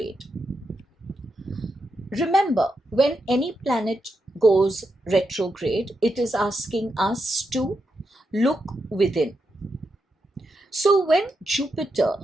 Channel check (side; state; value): both; normal; correlation 0.84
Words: Remember, when any planet goes retrograde, it is asking us to look within. So when